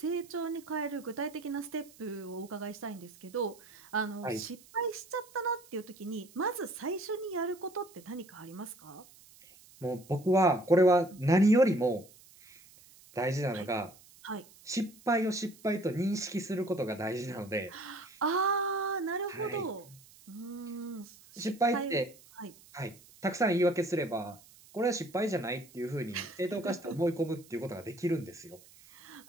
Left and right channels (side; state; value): right; noise; hiss, 24 dB below the sound